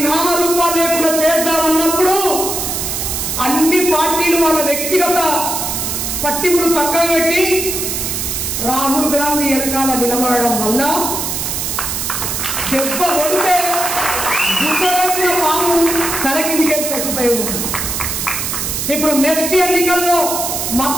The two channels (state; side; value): noise; right; hiss, 2 dB below the sound